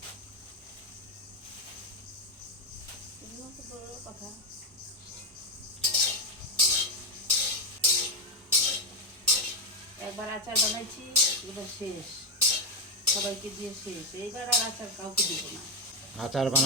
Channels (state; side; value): normal; both; correlation 0.06